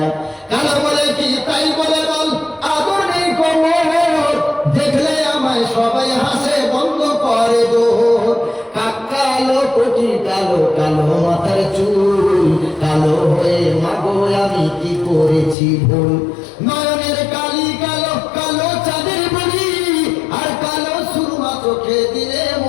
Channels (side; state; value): right; drops out; at 15.6 s